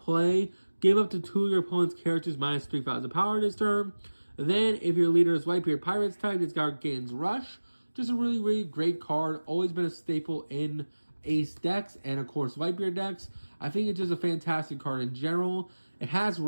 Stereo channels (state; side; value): inverted; both; correlation -1.00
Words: give up to 2 of your opponent's characters minus 3,000 power this turn. Then, if your leader is Whitebeard Pirates type, this guy gains Rush. Just a really, really great card. Always been a staple in Ace decks and, of course, Whitebeard decks. I think it's just a fantastic card in general. It has